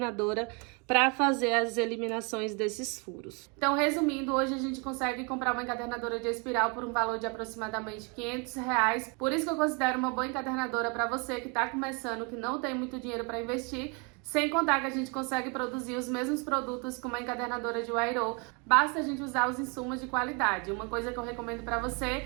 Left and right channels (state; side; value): quieter; left; 32.9 dB